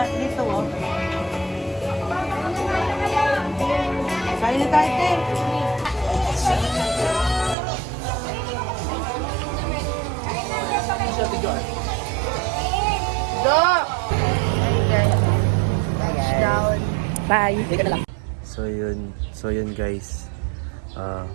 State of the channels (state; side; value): drops out; left; at 7.6 s